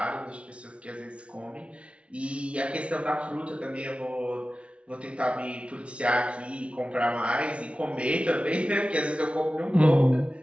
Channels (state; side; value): late; left; 0.061 ms